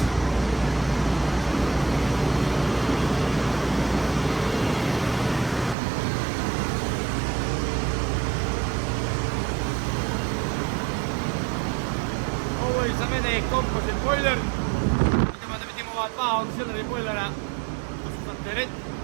mene je composite boiler. Idemo da vidimo ova dva auxiliary boilera, to su za teret.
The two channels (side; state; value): left; drops out; at 5.8 s